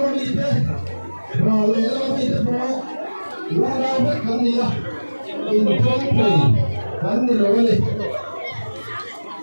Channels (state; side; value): inverted; both; correlation -1.00